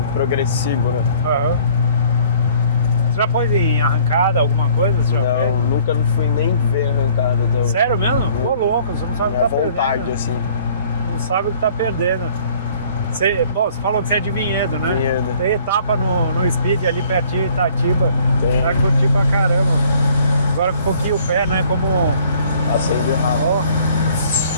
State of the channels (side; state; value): both; inverted; correlation -0.56